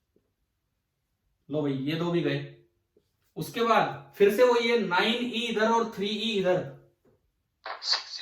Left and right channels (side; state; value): both; identical; correlation 1.00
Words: लो भाई, ये 2 भी गए। उसके बाद फिर से वही है, 9E इधर और 3E इधर,